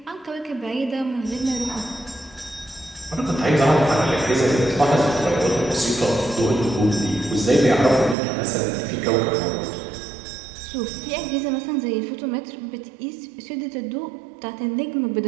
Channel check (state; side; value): drops out; left; at 8.2 s